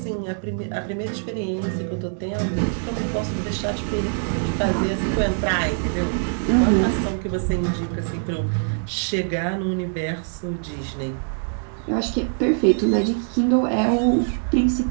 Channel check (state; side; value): silent; left; 63 dB below the other